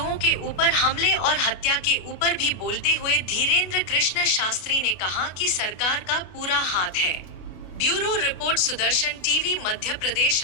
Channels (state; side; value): late; right; 32 ms